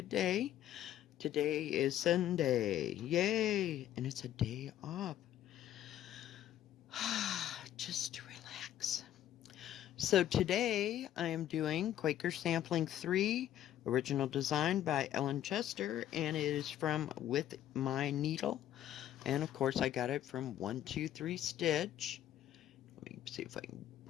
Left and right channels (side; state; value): right; quieter; 11.9 dB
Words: day. Today is Sunday. Yay! And it's a day off. Just to relax. So today I am doing Quaker Sampling 3, original design by Ellen Chester, and it is from With My Needle. And of course I got it from 123 Stitch. Let me see if I can